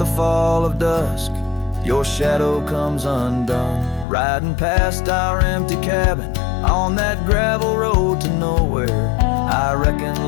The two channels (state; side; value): drops out; right; at 4.0 s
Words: fall of dusk your shadow comes undone. Riding past our empty cabin on that gravel road to nowhere, I reckon